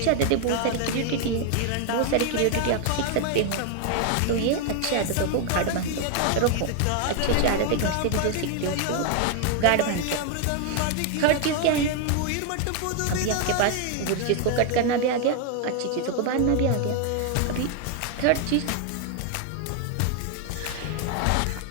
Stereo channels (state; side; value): different; both; correlation 0.00